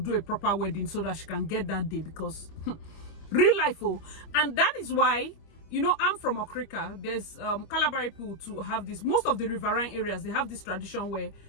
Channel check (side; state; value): right; late; 25 ms